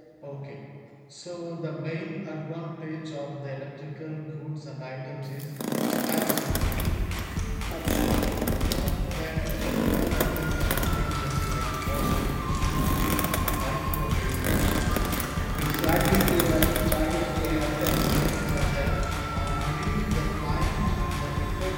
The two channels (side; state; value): both; identical; correlation 1.00